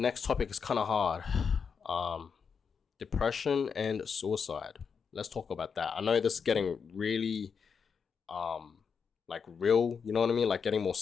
topic is kind of hard. Depression and suicide. Let's talk about that. I know this is getting really, like, real, you know what I mean? Like, getting more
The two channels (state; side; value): quieter; right; 6.2 dB